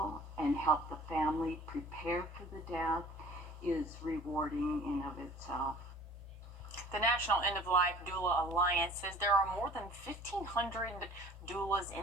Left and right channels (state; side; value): normal; both; correlation 0.48